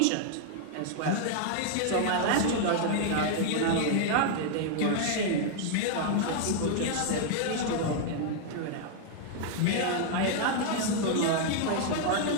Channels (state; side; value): different; both; correlation 0.00